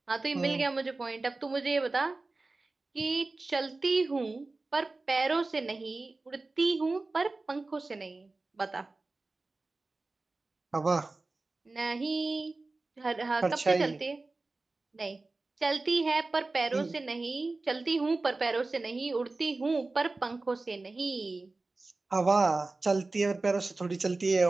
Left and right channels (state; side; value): quieter; left; 3.4 dB